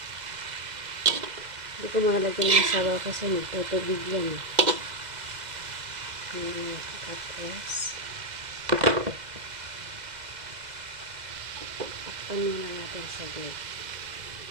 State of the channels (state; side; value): late; left; 2.0 ms